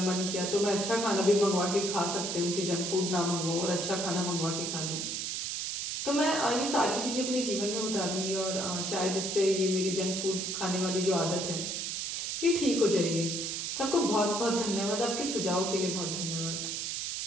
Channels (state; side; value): noise; right; hiss, 2 dB below the sound